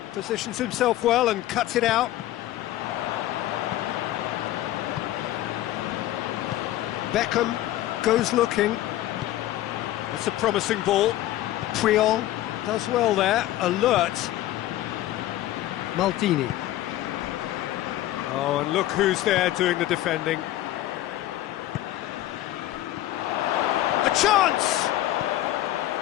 positions himself well and cuts it out. Beckham goes looking. That's a promising ball. Puyol does well there, alert. Maldini. Oh, and look who's there doing the defending. A chance!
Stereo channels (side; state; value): right; quieter; 14.5 dB